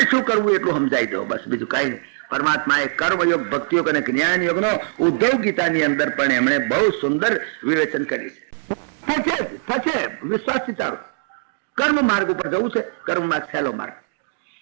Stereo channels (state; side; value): silent; left; digital silence